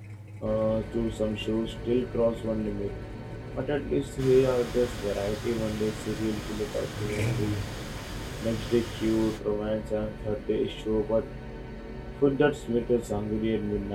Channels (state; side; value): identical; both; correlation 1.00